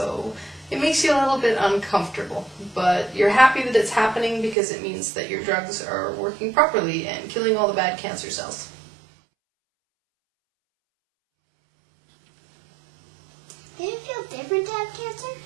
it makes you a little bit uncomfortable, but you're happy that it's happening because it means that your drugs are working properly and killing all the bad cancer cells. Did it feel different to have cancer?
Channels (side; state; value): left; drops out; at 4.5 s